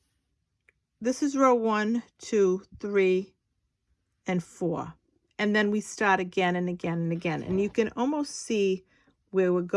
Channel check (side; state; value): both; identical; correlation 1.00